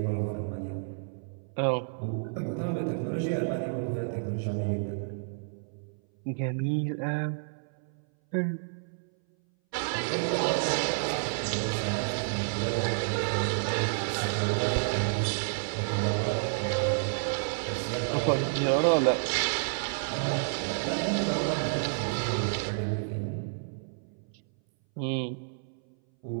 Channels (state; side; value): silent; left; 58 dB below the other